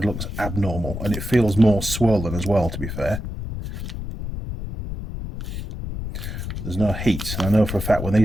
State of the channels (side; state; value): left; noise; rumble, 6 dB below the sound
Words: looks abnormal, and it feels more swollen as well, to be fair. There's no heat, and I know for a fact when